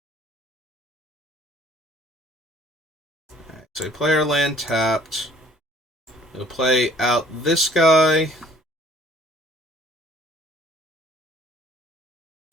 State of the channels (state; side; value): normal; both; correlation 0.56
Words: Alright, so player land tapped. We'll play out this guy.